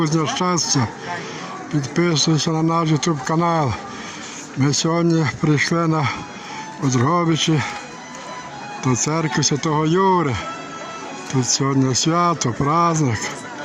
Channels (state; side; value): identical; both; correlation 1.00